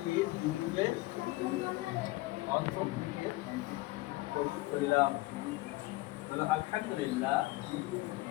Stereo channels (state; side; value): quieter; right; 20.3 dB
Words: নিজ বিন্দুকে অন্তর্বিধিকে কবুল করিলাম। বলো আলহামদুলিল্লাহ